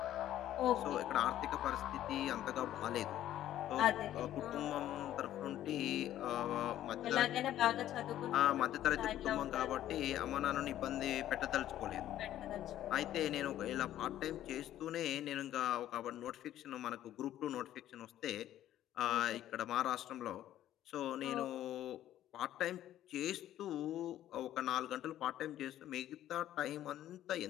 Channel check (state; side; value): quieter; right; 12.5 dB